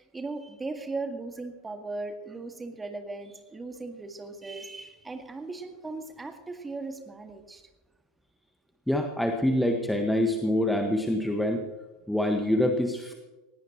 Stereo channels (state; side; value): normal; both; correlation 0.71